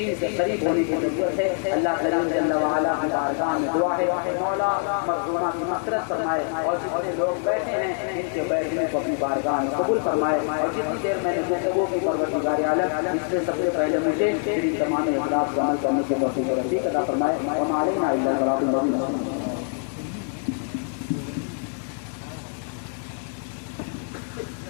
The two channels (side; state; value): right; silent; 56 dB below the other